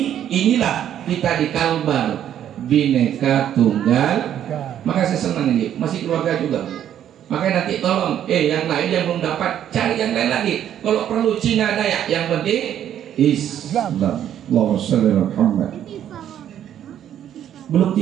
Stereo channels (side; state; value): left; quieter; 10.4 dB